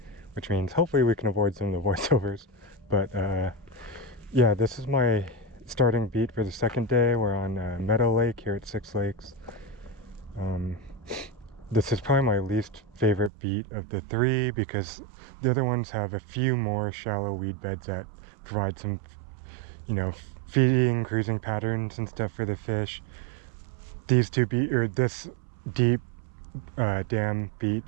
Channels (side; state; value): left; drops out; at 13.3 s